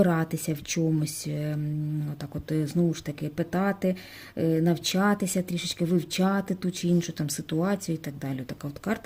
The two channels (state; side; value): identical; both; correlation 1.00